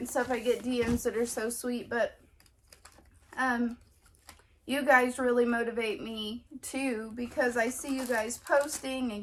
stuff. I get DMs that are so sweet, but you guys really motivate me too, because I see you guys posting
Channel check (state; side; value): identical; both; correlation 1.00